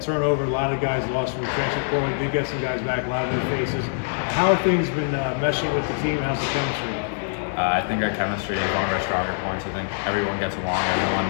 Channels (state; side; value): silent; right; 63 dB below the other